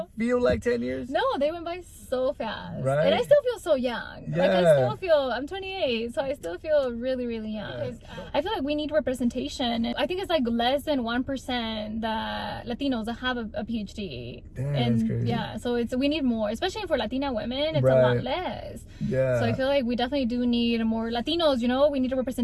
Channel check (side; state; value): both; identical; correlation 1.00